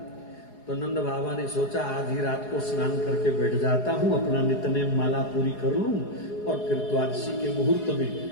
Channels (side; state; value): right; late; 4.8 ms